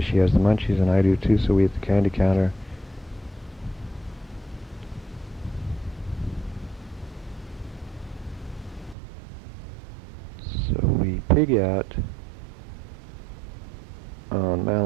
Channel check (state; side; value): drops out; left; at 9.0 s